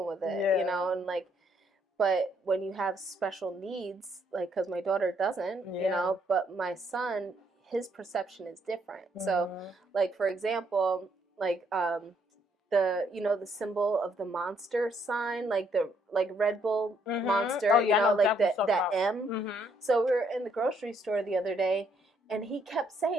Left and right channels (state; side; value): normal; both; correlation 0.70